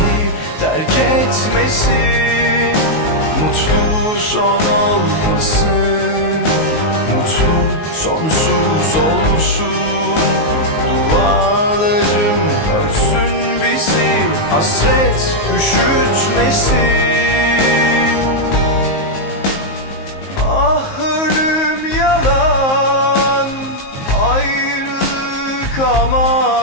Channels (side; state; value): right; late; 19 ms